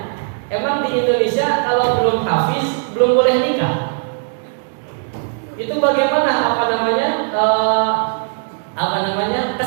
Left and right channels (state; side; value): silent; left; digital silence